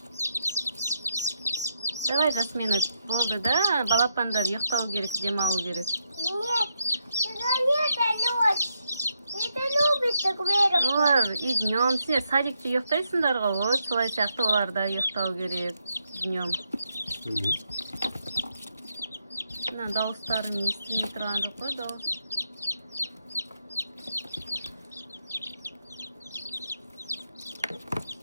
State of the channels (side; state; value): both; inverted; correlation -0.80